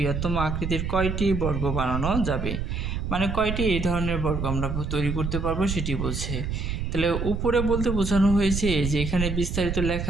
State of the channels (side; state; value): right; noise; rumble, 3 dB below the sound